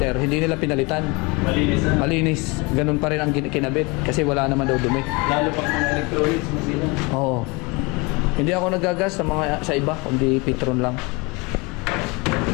hindi nila pinalitan. Malinis na. Malinis. Ganun pa rin ang kinabit kasi wala naman daw dumi. Lalo pang mga electronics mo sila. Oo. Hindi ako nagagas sa iba, kundi Petron lang.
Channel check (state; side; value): quieter; right; 27.2 dB